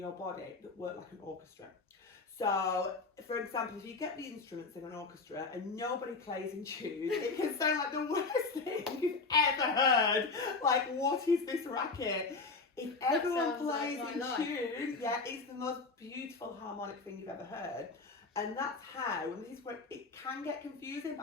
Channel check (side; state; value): right; quieter; 4.1 dB